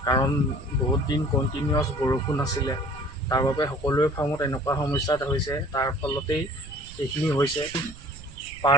কাৰণ বহুত দিন কণ্টিনিউৱাছ বৰষুণ আছিলে, তাৰ বাবে সকলোৰে ফাৰ্মত এনেকুৱা সমস্যা হৈছে। তাৰ ফলতেই এইখিনি হৈছে।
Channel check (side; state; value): right; noise; rumble, 17 dB below the sound